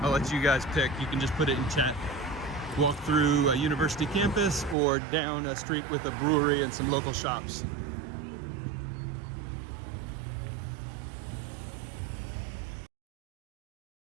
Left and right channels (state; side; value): drops out; left; at 4.8 s